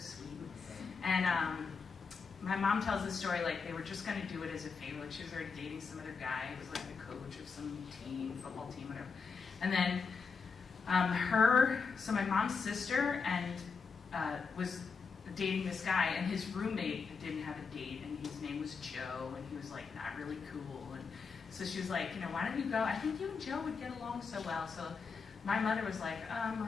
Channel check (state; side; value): quieter; right; 5.3 dB